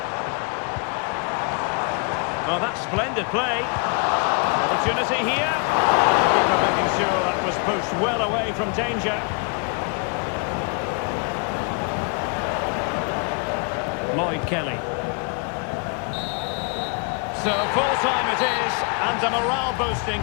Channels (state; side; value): quieter; right; 35.7 dB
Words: Oh, that's splendid play. Opportunity here. Keeper making sure that was pushed well away from danger. Lloyd Kelly. So full time it is, and a morale boosting